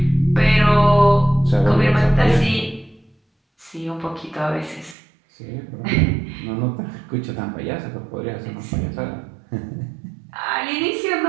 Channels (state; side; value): drops out; left; at 5.0 s